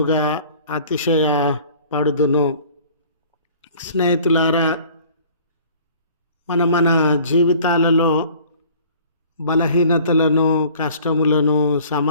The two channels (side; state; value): both; inverted; correlation -0.50